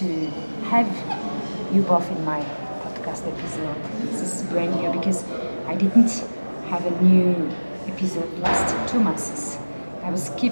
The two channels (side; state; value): both; inverted; correlation -1.00